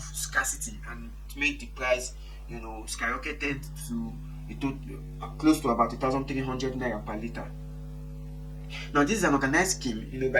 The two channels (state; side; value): identical; both; correlation 1.00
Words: scarcity, and it made the price, skyrocketed to close to about 1,300 naira per liter. Now, this is an organized scheme,